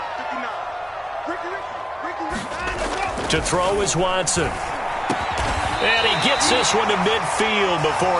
To throw is Watson. And he gets this one to midfield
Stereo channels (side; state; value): both; identical; correlation 1.00